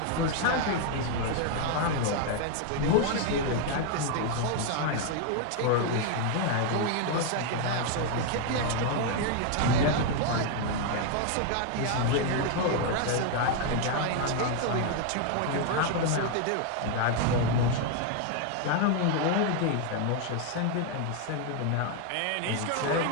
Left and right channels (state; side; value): different; both; correlation 0.00